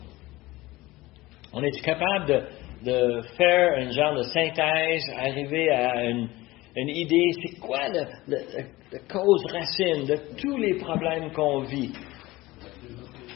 On est capable de faire un genre de synthèse, arriver à une idée, c'est quoi la cause racine de tous les problèmes qu'on vit?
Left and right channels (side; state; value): right; quieter; 19.4 dB